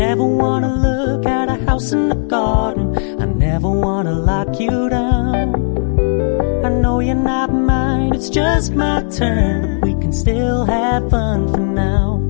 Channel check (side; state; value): right; silent; 69 dB below the other